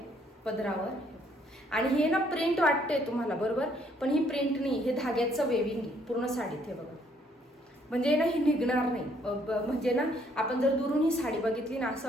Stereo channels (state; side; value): normal; both; correlation 0.67